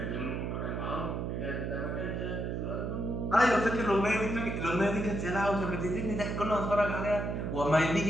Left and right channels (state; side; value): noise; right; hum, 2 dB below the sound